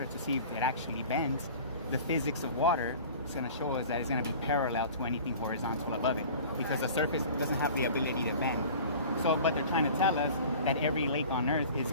to see if it actually bends, the physics of water is going to show us that it's going to be parallel to anything horizontal above it, because the surface doesn't have the ability to bend. So, but they're trying to tell us that every lake on Earth is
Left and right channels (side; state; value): both; inverted; correlation -0.42